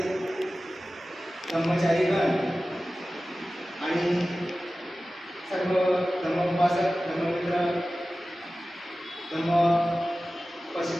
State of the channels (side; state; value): both; normal; correlation 0.96